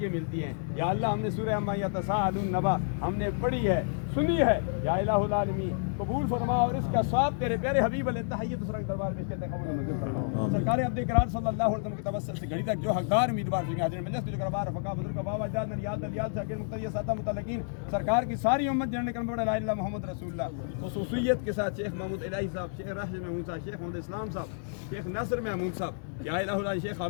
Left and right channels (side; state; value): right; silent; digital silence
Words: ملتی ہیں۔ یا اللہ ہم نے سورہ عما یتساءلون نبا ہم نے پڑھی ہے، سنی ہے، یا الہ العالمین قبول فرما اور اس کا ثواب تیرے پیارے حبیب علیہ تحیت سرنگ دربار میں کہتے ہیں قبول منظور فرما۔ سرکار عبد کرار صلی اللہ علیہ وسلم کے توسل سے گھڑی تک جو حقدار امیدوار ہیں حاضرین مجلس جو کربار رفقا بزرگ بابا جان نریال دلیال شاکر مقتدی ساتہ متعلقین سرکار کی ساری امت جننے کرم بڑا لا الہ محمد رسول اللہ، خصوصیت کے ساتھ شیخ محمود الہی صاحب، شیخ راشد محمود صاحب، شیخ محمد اسلام صاحب، شیخ ناصر محمود صاحب، یا الہ اللہ شیخ